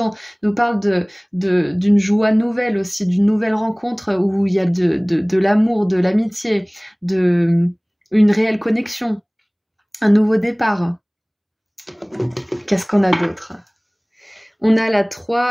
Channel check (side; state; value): both; identical; correlation 1.00